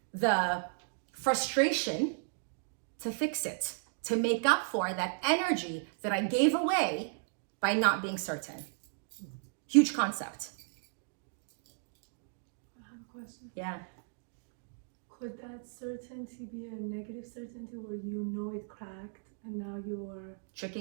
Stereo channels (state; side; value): silent; left; digital silence